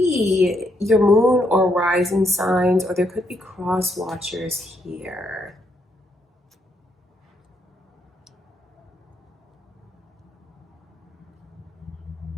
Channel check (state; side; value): normal; both; correlation 0.76